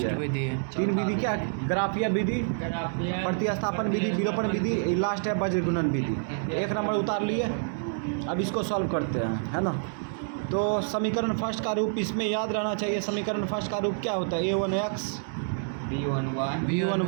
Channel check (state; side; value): silent; left; digital silence